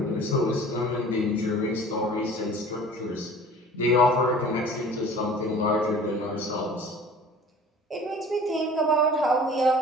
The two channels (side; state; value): both; normal; correlation 0.45